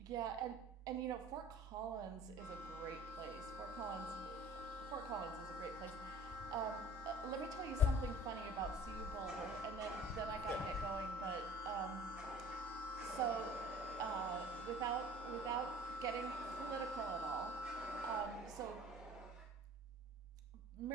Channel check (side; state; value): both; normal; correlation 0.46